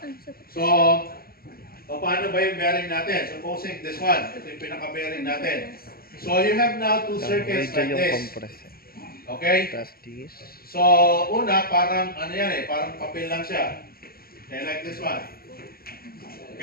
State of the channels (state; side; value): late; right; 0.44 ms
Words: so, paano ba yung bearing natin? Supposing this one, ito yung pinaka-bearing natin. So, you have now two circuits like this. Okay? So, una, parang, ano yan parang papel lang siya. Okay, like this one.